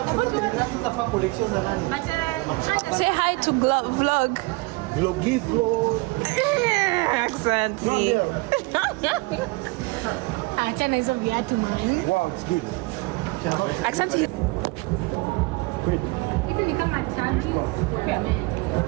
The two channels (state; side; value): quieter; left; 25.0 dB